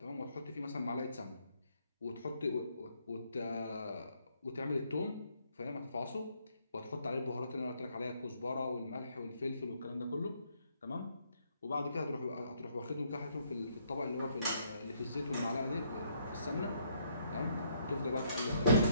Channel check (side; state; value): both; inverted; correlation -0.70